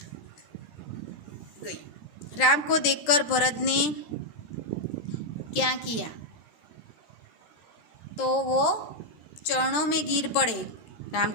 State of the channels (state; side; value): late; right; 13 ms